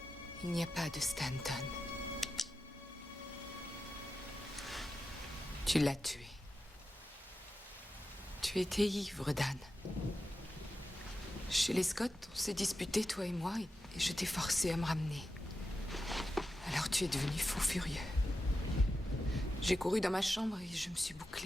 Il n'y a pas de Stanton. Tu l'as tué. Tu étais ivre, Dan. Chez les Scott, on s'est disputé, toi et moi, et je t'ai forcé à me ramener. Alors tu es devenu fou furieux. J'ai couru dans ma chambre et je me suis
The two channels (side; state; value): both; normal; correlation 0.90